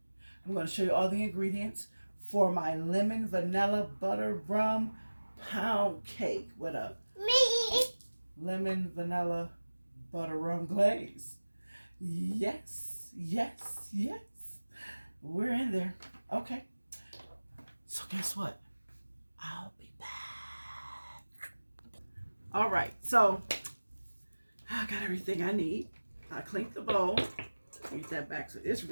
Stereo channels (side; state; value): both; inverted; correlation -1.00